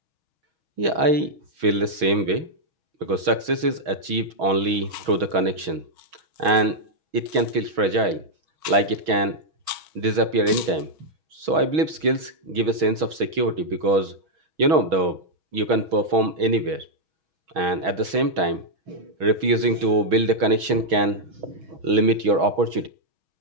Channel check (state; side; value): late; left; 6.2 ms